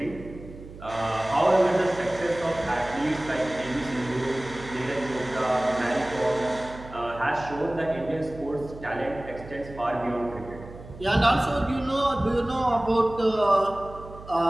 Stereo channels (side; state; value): right; noise; hum, 16 dB below the sound